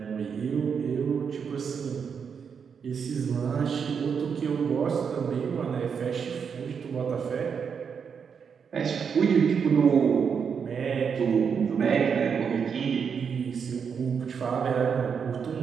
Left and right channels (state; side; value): quieter; left; 6.6 dB